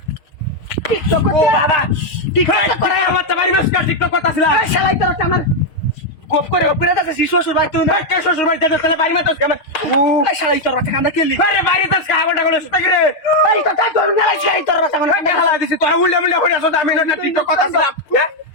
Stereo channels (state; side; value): late; right; 6.4 ms